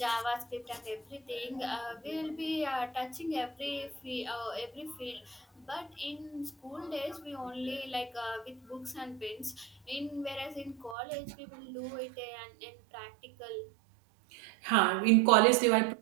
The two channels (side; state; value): left; drops out; at 11.0 s